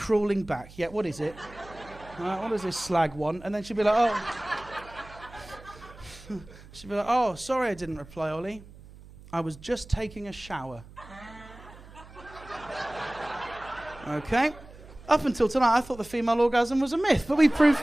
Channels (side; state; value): right; noise; hum, 19 dB below the sound